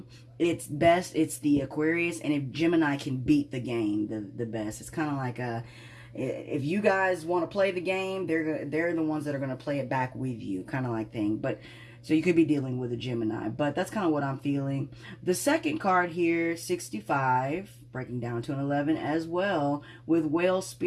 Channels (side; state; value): both; identical; correlation 1.00